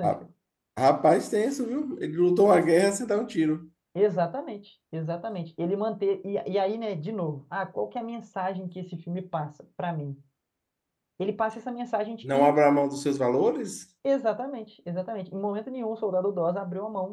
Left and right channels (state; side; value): identical; both; correlation 1.00